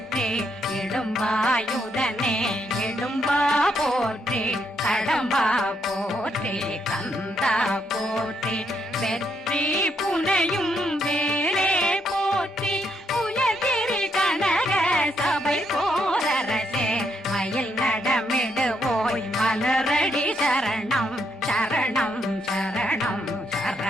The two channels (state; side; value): normal; both; correlation 0.77